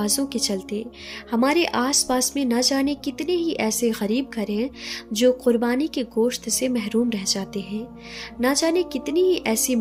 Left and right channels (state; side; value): identical; both; correlation 1.00